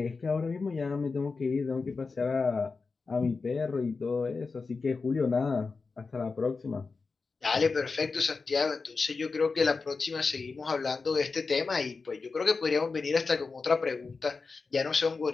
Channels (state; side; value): quieter; right; 4.4 dB